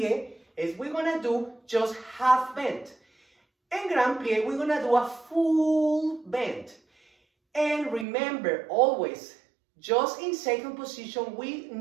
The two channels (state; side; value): drops out; left; at 8.1 s